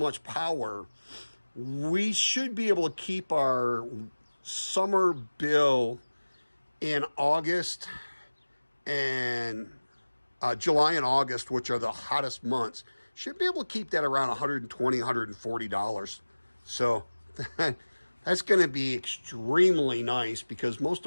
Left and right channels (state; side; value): inverted; both; correlation -1.00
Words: power, we should be able to keep our summer bill in August and July and August, which are the hottest months, should be able to keep that around $120, $140. So that's going to be extremely nice, because most